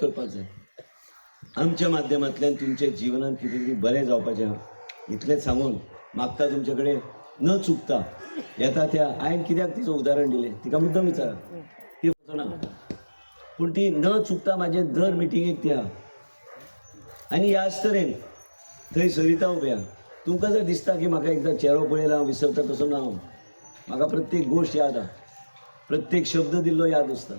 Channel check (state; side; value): inverted; both; correlation -1.00